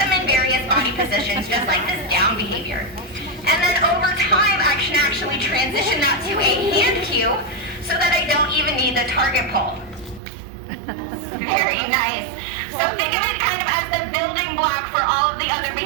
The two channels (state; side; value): drops out; left; at 10.2 s